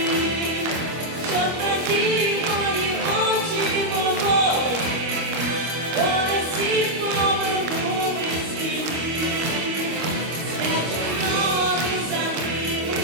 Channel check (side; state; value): left; late; 25 ms